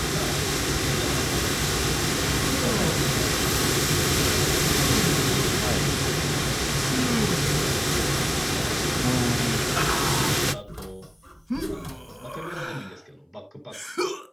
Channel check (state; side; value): identical; both; correlation 1.00